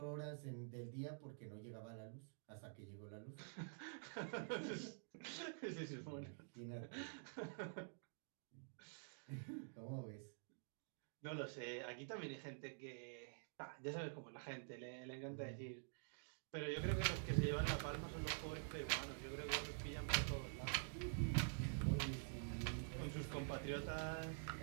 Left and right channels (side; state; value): left; silent; digital silence